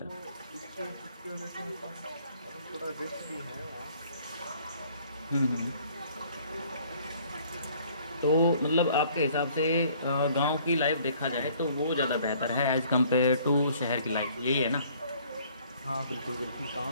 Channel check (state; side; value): inverted; both; correlation -0.58